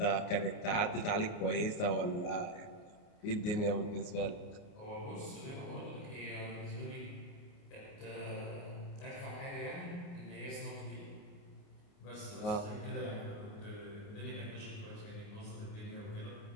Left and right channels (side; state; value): right; late; 29 ms